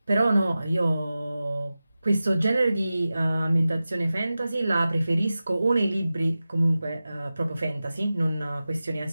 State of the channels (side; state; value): both; inverted; correlation -0.95